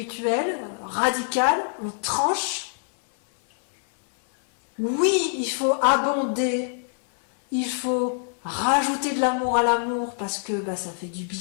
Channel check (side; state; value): right; silent; digital silence